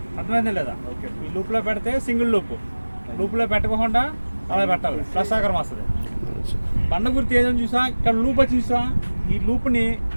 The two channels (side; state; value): both; inverted; correlation -1.00